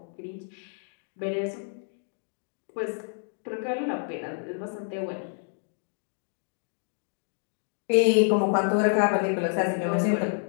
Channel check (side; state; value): right; silent; 59 dB below the other